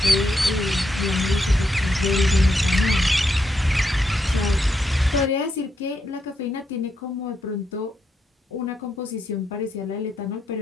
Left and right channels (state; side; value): normal; both; correlation 0.81